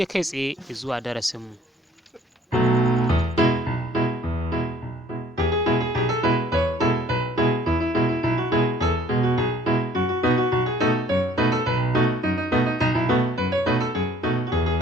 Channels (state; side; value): normal; both; correlation 0.59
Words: kai tsaye zuwa darasin mu.